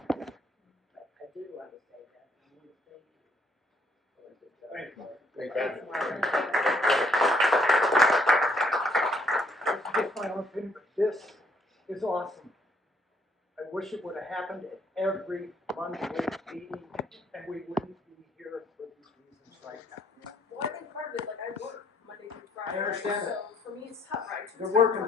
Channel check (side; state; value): both; normal; correlation 0.67